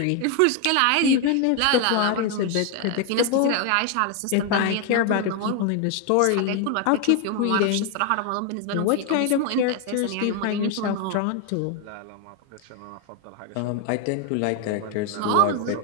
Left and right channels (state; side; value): different; both; correlation 0.01